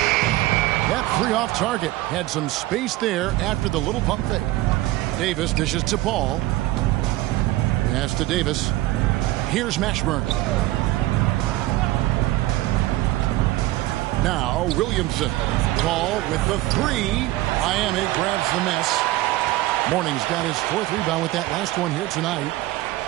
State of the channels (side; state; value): left; quieter; 17.1 dB